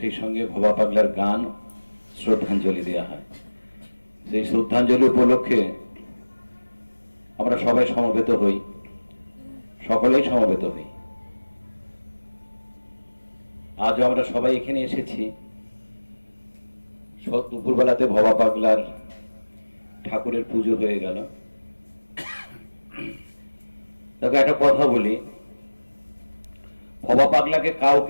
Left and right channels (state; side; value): inverted; both; correlation -1.00